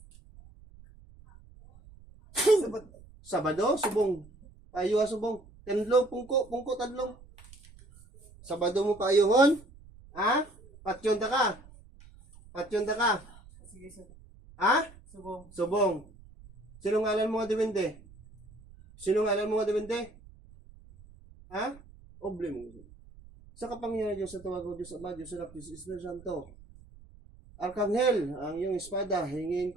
Sabado, subong. Payo subong. Tendlo, pungko tadlong. Sabado mo payuhon? Ha? Patyon ta ka? Patyon ta ka? Ha? Subong. Sino ngalan mo nga diwende? Sino ngalan mo nga diwende? Ha? Oble mo. Sa kapangyarihan Diyos sa tawag ko, Diyos Ama, Diyos Anak, Diyos Espiritu Santo. Arkanghel, ang iyong espada, hingin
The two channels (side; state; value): right; noise; rumble, 22 dB below the sound